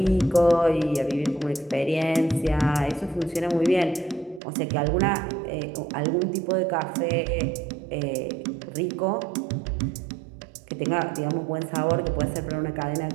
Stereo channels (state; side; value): drops out; left; at 4.4 s